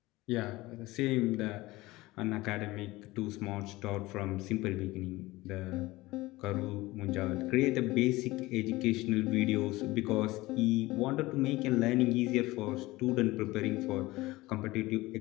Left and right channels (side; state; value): right; quieter; 19.7 dB